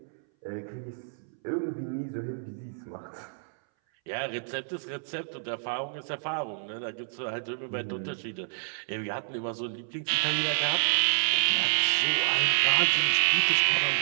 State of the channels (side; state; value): left; silent; 59 dB below the other